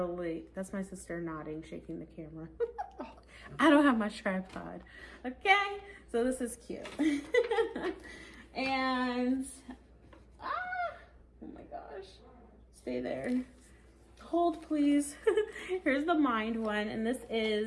That's my sister nodding, shaking the camera. I don't have my tripod. Okay, so this is cute. And, oh my gosh. Stay there. Hold, please. Here's the Mind one, and this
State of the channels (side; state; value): both; identical; correlation 1.00